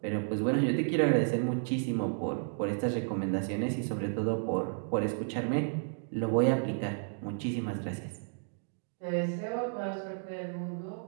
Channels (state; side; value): silent; left; digital silence